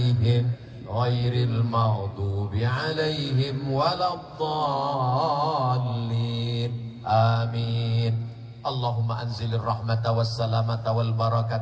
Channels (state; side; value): identical; both; correlation 1.00